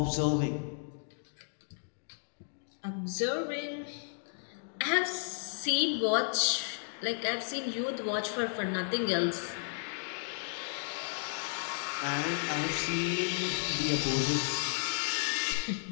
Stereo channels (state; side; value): silent; right; digital silence